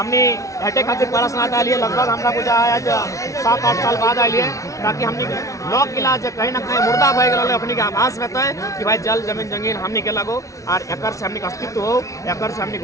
हटे खातिर प्रश्न आ लिए, लगभग हमरा पूजा आज 7-8 साल बाद आइए, ताकि हमने लोक इलाज कहीं ना कहीं मुर्दा भय गए अपने के आभास में है कि भाई जल जमीन जंगीन हमने के लगो और एक से हमने अस्तित्व हो, एक से हमने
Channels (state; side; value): late; right; 0.16 ms